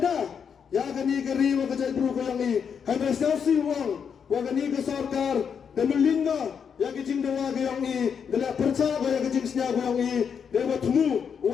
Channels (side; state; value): right; quieter; 7.0 dB